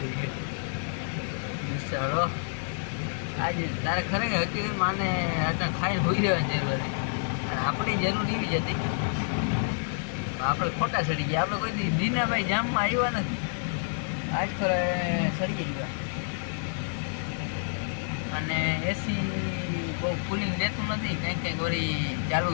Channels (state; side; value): silent; right; digital silence